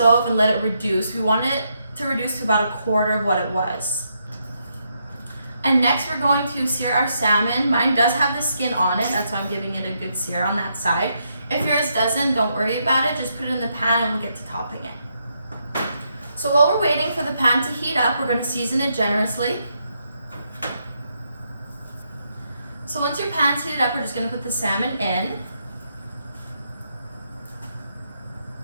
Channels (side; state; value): both; inverted; correlation -0.79